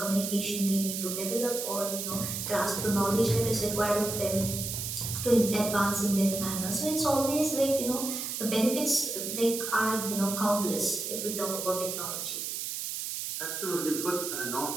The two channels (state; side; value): noise; right; hiss, 4 dB below the sound